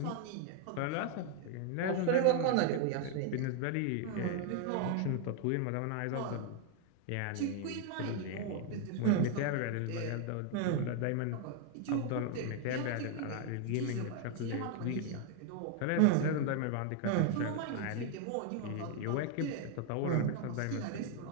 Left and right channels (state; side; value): different; both; correlation 0.00